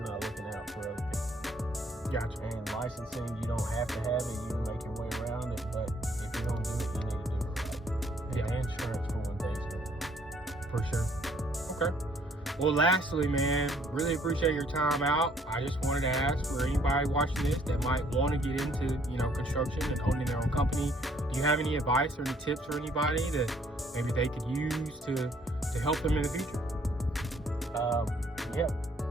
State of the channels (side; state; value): both; normal; correlation 0.64